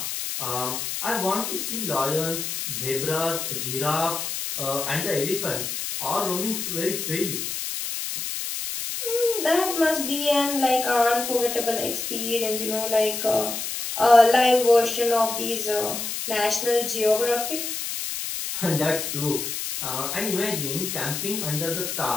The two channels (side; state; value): left; noise; hiss, 4 dB below the sound